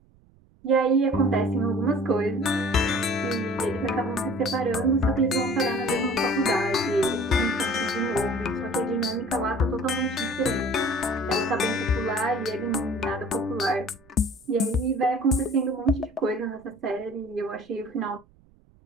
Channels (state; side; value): noise; right; rumble, 30 dB below the sound